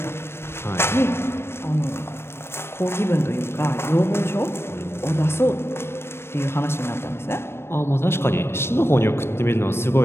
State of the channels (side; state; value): right; late; 0.12 ms